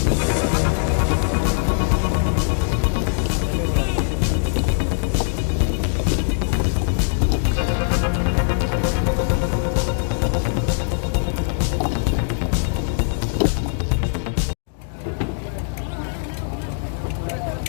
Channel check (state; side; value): silent; right; digital silence